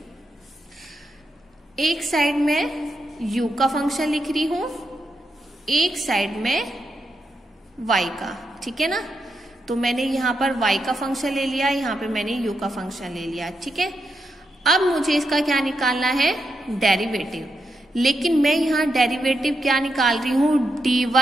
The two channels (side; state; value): both; normal; correlation 0.84